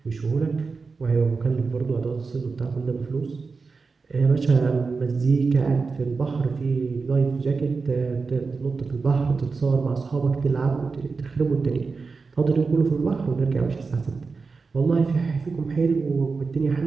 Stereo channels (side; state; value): left; quieter; 4.5 dB